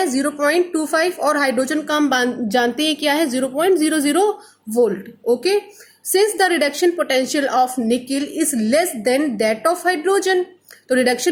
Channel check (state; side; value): identical; both; correlation 1.00